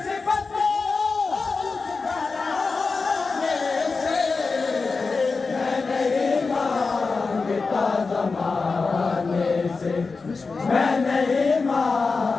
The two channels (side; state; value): right; quieter; 4.3 dB